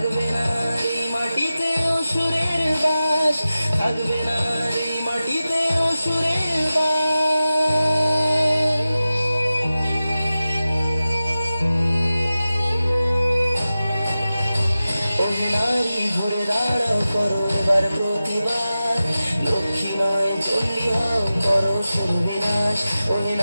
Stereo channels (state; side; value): inverted; both; correlation -0.95